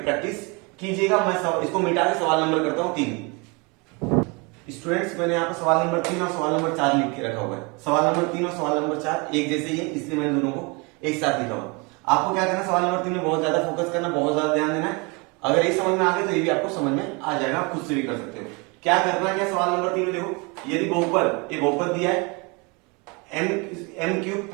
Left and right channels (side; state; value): left; quieter; 29.4 dB